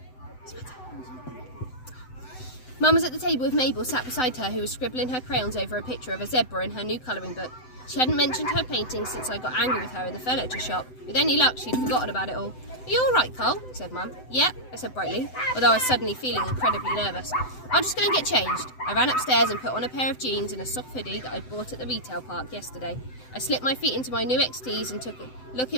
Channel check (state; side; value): late; right; 7.9 ms